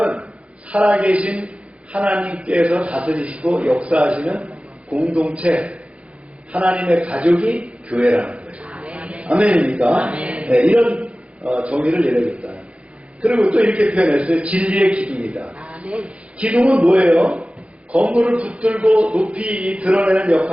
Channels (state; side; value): late; left; 0.062 ms